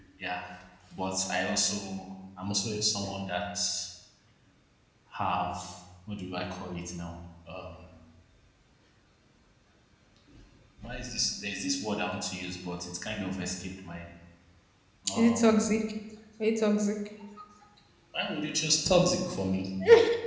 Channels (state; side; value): identical; both; correlation 1.00